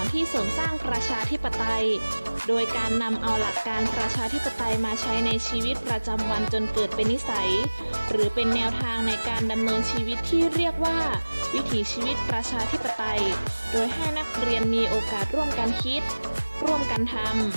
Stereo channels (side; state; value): both; inverted; correlation -1.00